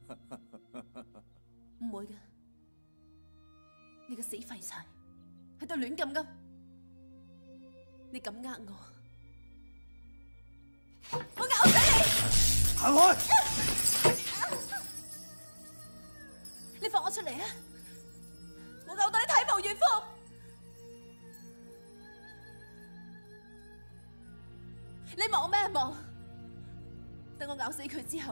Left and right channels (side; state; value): both; inverted; correlation -1.00